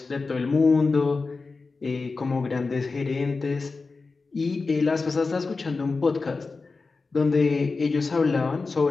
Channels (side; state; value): right; quieter; 4.1 dB